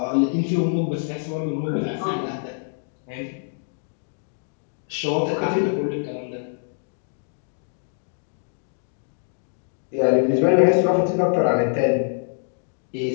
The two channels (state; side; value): silent; right; digital silence